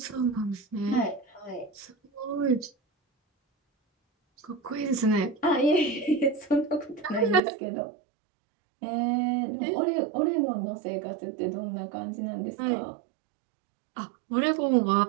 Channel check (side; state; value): left; drops out; at 7.4 s